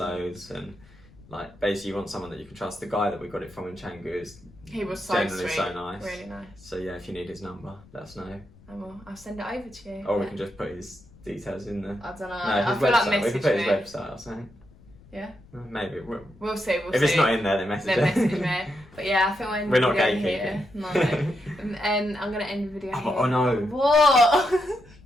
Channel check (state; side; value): noise; left; rumble, 24 dB below the sound